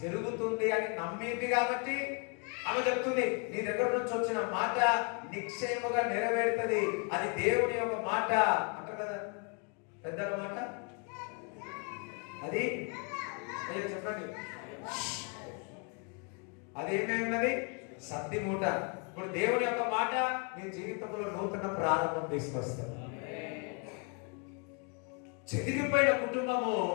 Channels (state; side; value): quieter; right; 35.8 dB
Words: జరుగుతుంది అని నమ్మింది కాబట్టి ఆమె చెప్తుంది, నీ దగ్గర నుంచి వచ్చిన మాట నిశ్చయముగా నెరవేరుతుంది. అది దేవుని యొక్క మాట అంటారు కదా పెద్దల మాట. అది చెప్పండి, అదేమైనది? సత్తి మూట. ఇప్పుడు దేవుని యొక్క మాట మీ జీవితంలో నూతన ప్రారంభం తీసుకొస్తారు. చెదిరిపోయిన కుటుంబము